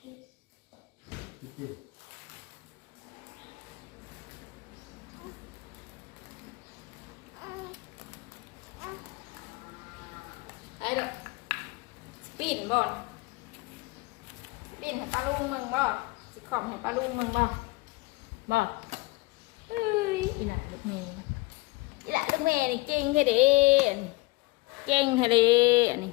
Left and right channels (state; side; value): quieter; right; 23.6 dB